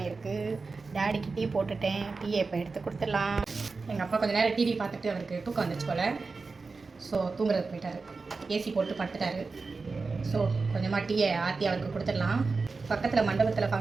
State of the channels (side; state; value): left; quieter; 4.2 dB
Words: இருக்குது. டேடிக்கு டீ போட்டுட்டேன். டீயை இப்போ எடுத்து கொடுத்துடலாம். எங்கள் அப்பா கொஞ்சம் நேரம் டிவி பார்த்துட்டு அவருக்கு தூக்கம் வந்துச்சு போல். ஸோ தூங்குறதுக்கு போயிட்டார். ஏசி போட்டு படுத்துட்டாரு. ஸோ கொஞ்சமாக டீயை ஆற்றி அவருக்கு கொடுத்துடலாம். பக்கத்தில் மண்டபத்தில்